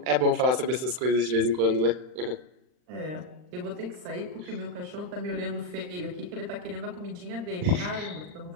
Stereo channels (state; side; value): late; left; 39 ms